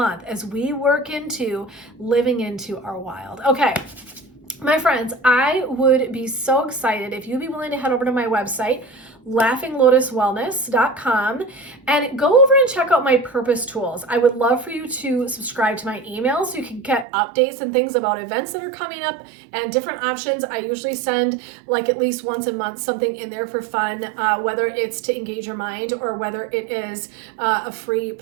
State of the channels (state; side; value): drops out; left; at 17.1 s